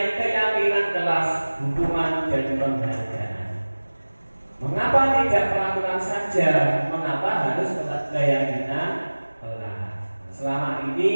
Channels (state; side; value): inverted; both; correlation -1.00